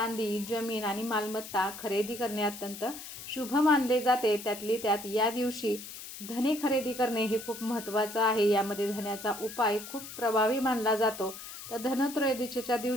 जमीन आणि मालमत्ता खरेदी करणे अत्यंत शुभ मानले जाते. त्यातली त्यात या दिवशी धने खरेदी करणे हे खूप महत्त्वाचं आहे. यामध्ये धन्याचा उपाय खूप प्रभावी मानला जातो. तर धनत्रयोदशीच्या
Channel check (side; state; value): left; noise; hiss, 12 dB below the sound